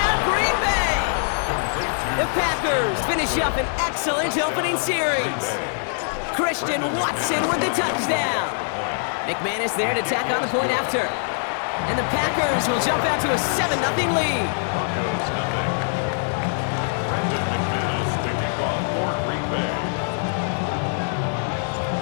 Green Bay. The Packers finish up an excellent opening series. Christian Watson with the touchdown. McManus there to tack on the point after. And the Packers will jump out to a 7-0 lead.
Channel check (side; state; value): right; silent; digital silence